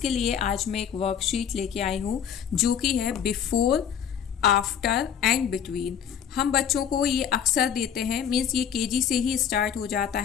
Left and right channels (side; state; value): right; quieter; 8.5 dB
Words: लिए आज मैं एक वर्कशीट लेके आई हूँ जो कि है बिफोर, आफ्टर एंड बिटवीन। हम बच्चों को ये अक्सर देते हैं, मीन्स ये केजी से ही स्टार्ट हो जाता